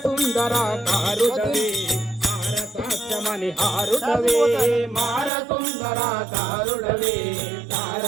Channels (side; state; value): left; drops out; at 5.3 s